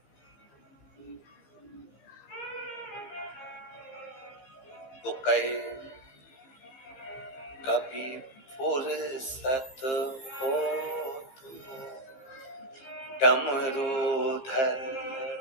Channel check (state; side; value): late; right; 15 ms